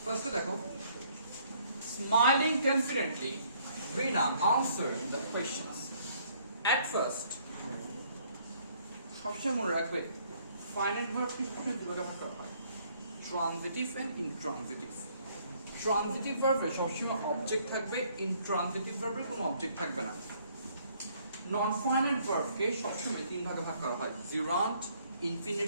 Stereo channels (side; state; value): both; inverted; correlation -0.64